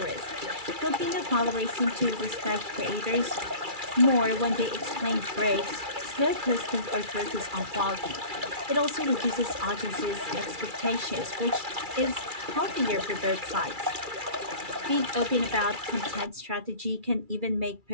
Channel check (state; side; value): late; left; 2.3 ms